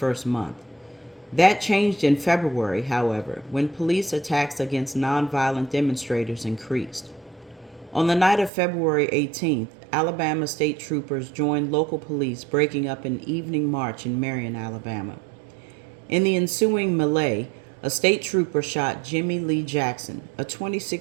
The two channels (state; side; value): drops out; left; at 8.5 s